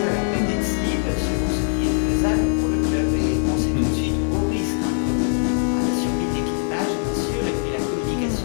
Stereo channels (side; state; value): right; silent; digital silence